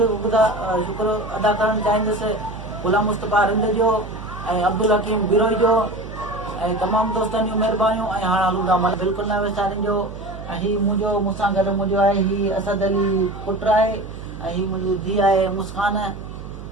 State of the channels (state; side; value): noise; right; hum, 12 dB below the sound